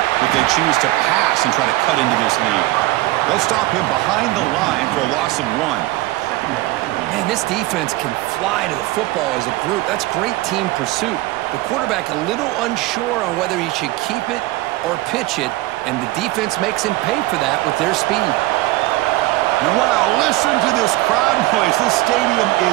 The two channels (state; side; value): quieter; left; 18.7 dB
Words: if they choose to pass and try to cut into this lead. They'll stop him behind the line for a loss of 1. Man, this defense can fly to the football as a group. That's great team pursuit. The quarterback a little unsure on whether he should keep it or pitch it, and the defense makes him pay for that with their speed. And wow, listen to this crowd noise. This stadium